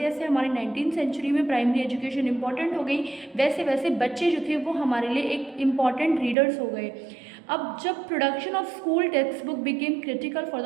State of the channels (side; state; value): left; drops out; at 6.4 s